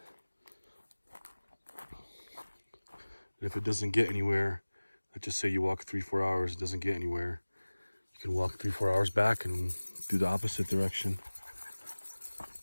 And if it doesn't get anywhere, let's just say you walk 3-4 hours, it doesn't get anywhere, you can walk 3-4 hours back and do the opposite direction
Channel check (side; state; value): both; inverted; correlation -1.00